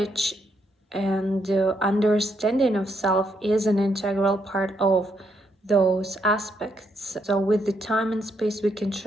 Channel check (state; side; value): normal; both; correlation 0.76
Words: and understanding of self is an integral part of those aspects. So with the time and space, we can